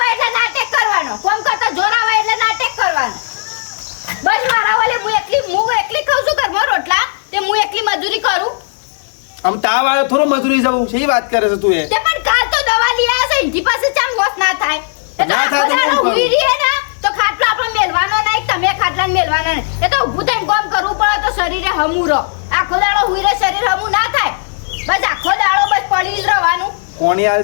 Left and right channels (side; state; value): right; silent; 65 dB below the other